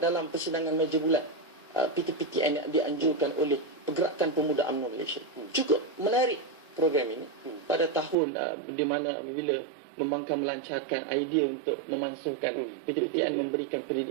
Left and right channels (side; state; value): left; drops out; at 8.2 s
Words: persidangan meja bulat PTPTN yang dianjurkan oleh Pergerakan Pemuda UMNO Malaysia. Cukup menarik program ini pada tahun di mana apabila membangkang melancarkan idea untuk memansuhkan PTPTN memberikan